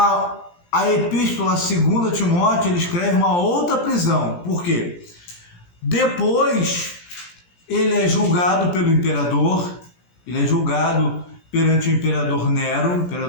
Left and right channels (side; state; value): right; late; 17 ms